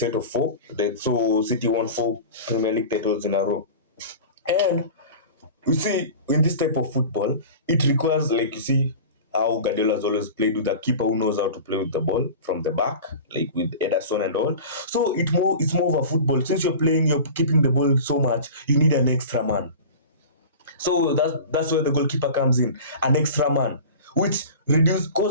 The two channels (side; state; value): both; inverted; correlation -0.35